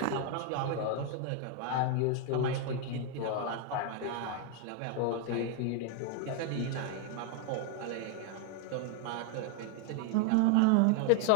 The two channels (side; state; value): both; different; correlation 0.00